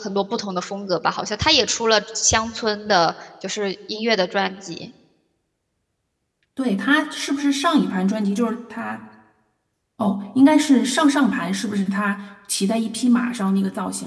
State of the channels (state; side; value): identical; both; correlation 1.00